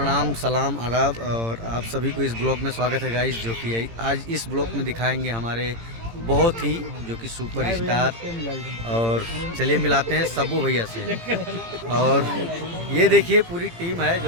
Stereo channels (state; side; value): late; left; 18 ms